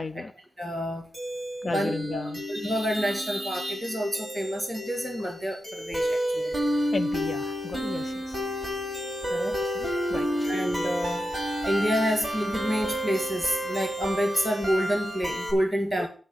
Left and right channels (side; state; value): both; normal; correlation 0.89